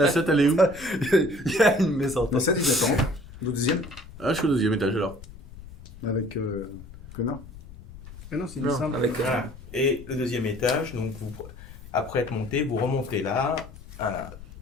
7, elle est où? Il y a une maison. Dans 7, il attend. Au deuxième? Ah, je suis au deuxième étage alors. Avec Connor. Ah non, c'est une Non. simple. Avec Voilà. Et le deuxième étage, donc vous, après être monté, vous remontez là. Voilà.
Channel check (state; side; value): noise; left; rumble, 17 dB below the sound